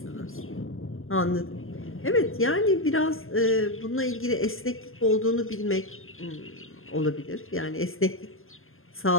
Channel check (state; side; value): late; right; 0.60 ms